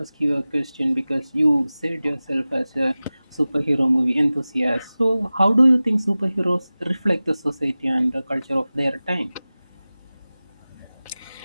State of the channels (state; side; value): inverted; both; correlation -0.97